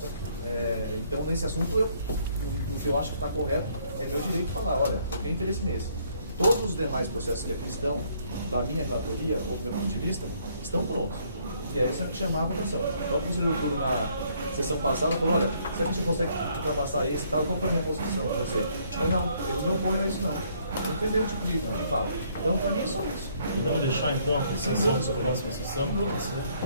Então, nesse assunto, o que eu acho que está correto é meu direito de falar: olha, eu tenho interesse nesse. Todos os demais processos que aqui estão, da minha relatoria ou do meu ponto de vista, estão prontos. E aí você chamar a votação. Então o conselheiro Bruno na sessão passada falou: olha, se a gente consegue ultrapassar esse e tal, qual foi a minha posição com você? Eu falei: não, ele não opõe a isso não. Não entendeu o tipo de fala. Então para mim é só isso. Podemos deixar então a sessão para a próxima sessão?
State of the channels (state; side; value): inverted; both; correlation -0.66